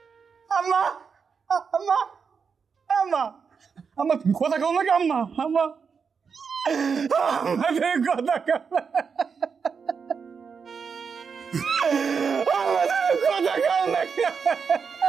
আম্মা আম্মা আম্মা আম্মা তুমি কথা কও নাকি? আম্মা আম্মা আমাদের কথা কও, আমাদের কথা কও নাকি?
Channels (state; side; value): quieter; left; 5.9 dB